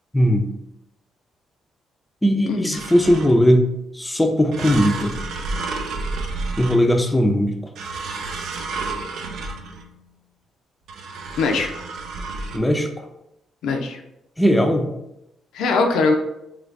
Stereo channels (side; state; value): both; normal; correlation 0.86